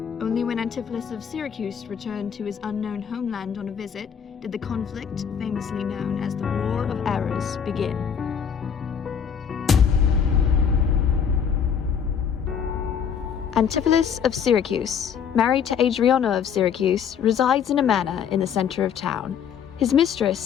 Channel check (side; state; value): right; quieter; 7.6 dB